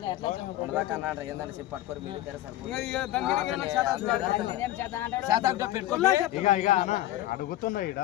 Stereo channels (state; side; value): quieter; right; 14.7 dB